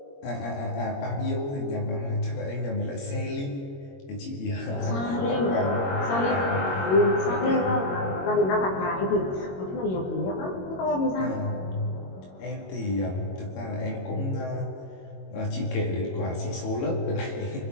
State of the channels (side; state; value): right; late; 22 ms